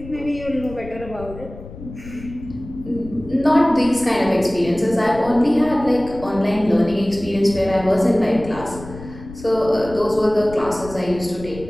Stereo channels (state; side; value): noise; left; rumble, 14 dB below the sound